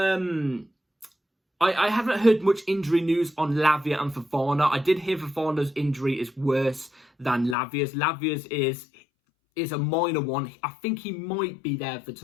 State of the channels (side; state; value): right; drops out; at 7.6 s